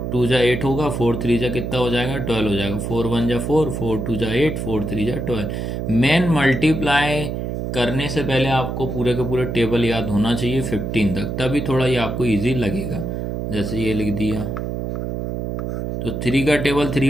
2 जा 8 होगा, 4 3 जा कितना हो जाएगा 12 हो जाएगा, 4 1 जा 4, 4 2 जा 8, 4 3 जा 12। मेन मल्टीप्लाई करने से पहले आपको पूरे के पूरे टेबल याद होना चाहिए 15 तक, तभी थोड़ा ये आपको इजी लगेगा। जैसे ये लिख दिया, तो 3 का टेबल 3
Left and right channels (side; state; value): right; noise; hum, 3 dB below the sound